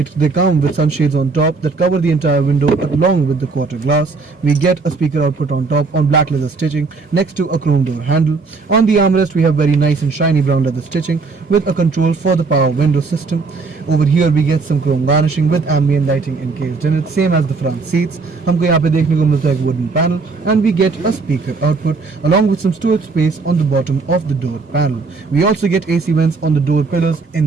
come with some shades on top that cover the entire window along with the quarter glass. We get a speaker output on top on black leather stitching next to a chrome door handle. On the armrest, we have very nice and shiny brown leather stitching with a control for the power window system. Over here, we get some chrome garnishing with ambient lighting encased in it, same as the front seat. हमको यहाँ पे देखने को मिलता है एक wooden panel, and we get a speaker output along with some storage space on the bottom of the door panel. We also get AC vents on the door pillars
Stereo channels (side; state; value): left; quieter; 4.3 dB